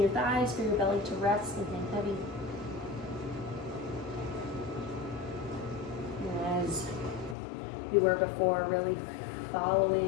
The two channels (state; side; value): drops out; right; at 7.4 s